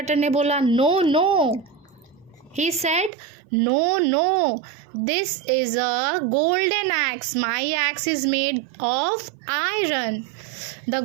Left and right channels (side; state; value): left; drops out; at 3.1 s